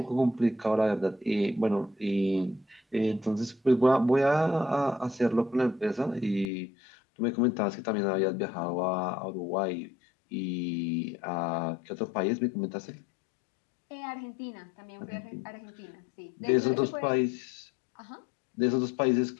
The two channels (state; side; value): drops out; right; at 6.5 s